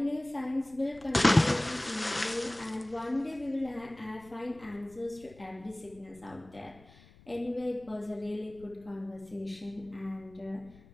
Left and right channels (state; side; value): noise; left; rumble, 23 dB below the sound